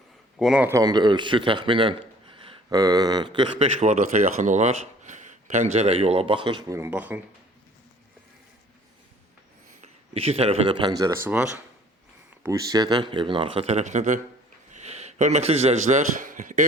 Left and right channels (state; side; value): normal; both; correlation 0.54